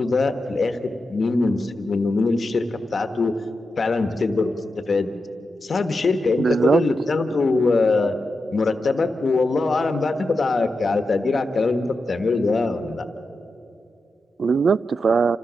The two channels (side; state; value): both; normal; correlation 0.89